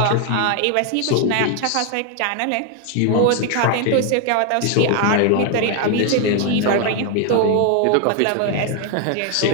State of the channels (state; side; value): different; both; correlation 0.01